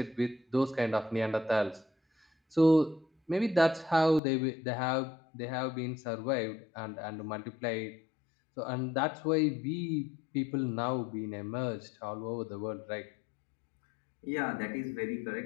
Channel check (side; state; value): right; drops out; at 4.2 s